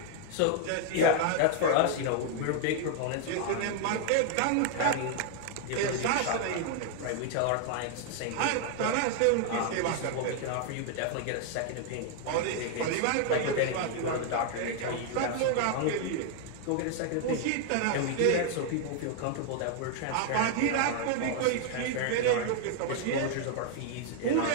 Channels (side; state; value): both; different; correlation 0.00